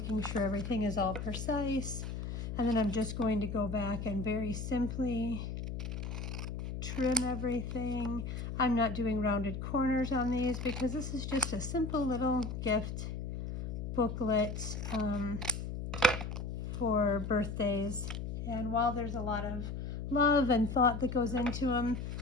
sure everything is all precise. And then I'm just going to go back and very simply trim everything. I'm not doing rounded corners on these because this is just a simple little gift booklet for birthdays. And while there's a lot of love and thought that goes into them,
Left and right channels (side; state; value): left; noise; hum, 5 dB below the sound